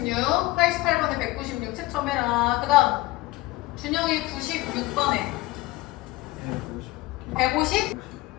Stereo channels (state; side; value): quieter; right; 19.6 dB